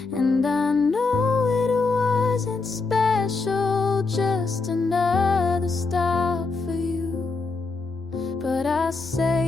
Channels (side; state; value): right; quieter; 4.0 dB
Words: And I know it wasn't special, just another stop for you. But I